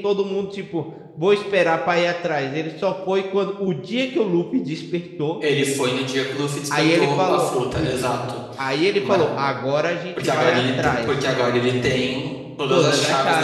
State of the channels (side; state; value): both; identical; correlation 1.00